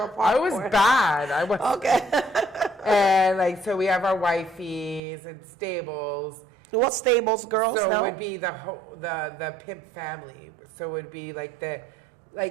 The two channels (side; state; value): left; drops out; at 5.0 s